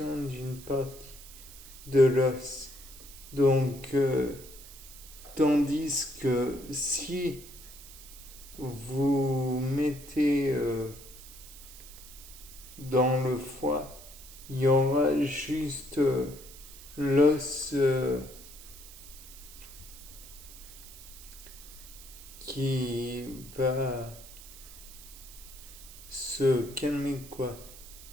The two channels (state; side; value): noise; right; hiss, 17 dB below the sound